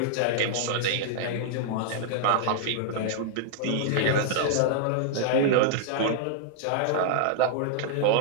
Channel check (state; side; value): different; both; correlation -0.01